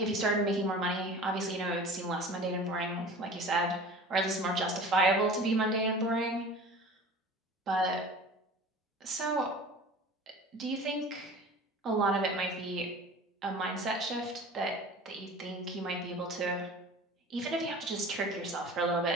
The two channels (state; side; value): normal; both; correlation 0.40